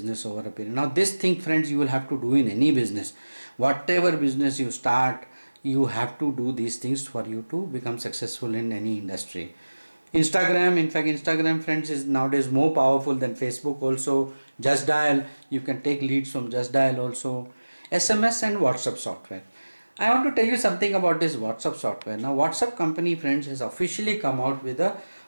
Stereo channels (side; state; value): both; inverted; correlation -1.00